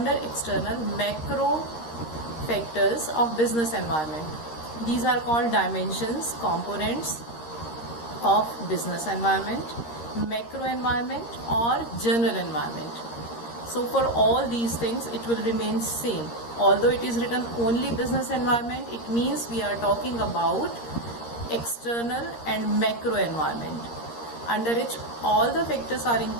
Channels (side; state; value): right; late; 13 ms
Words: macro factors of business environment. These are called dimensions, components of business environment, macro environment or general environment. So for all these things it will remain same. Although it is written only business environment, it means we are talking about external and macro environment, under which all the factors are